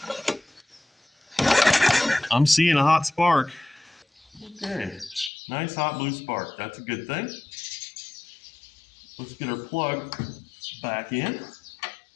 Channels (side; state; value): right; drops out; at 5.3 s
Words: I'm seeing a hot spark. Okay, nice hot blue spark. That's a good thing. Let's get our plug back in.